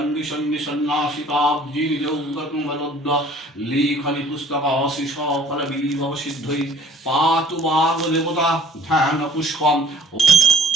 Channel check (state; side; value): normal; both; correlation 0.53